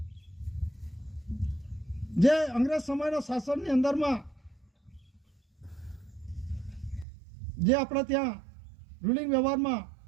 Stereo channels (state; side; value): drops out; left; at 7.1 s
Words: જે અંગ્રેજ સમયના શાસનની અંદરમાં જે આપણે ત્યાં રૂલિંગ વ્યવહારમાં